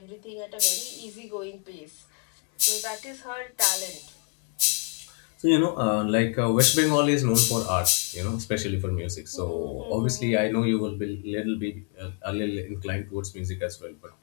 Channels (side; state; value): right; quieter; 27.8 dB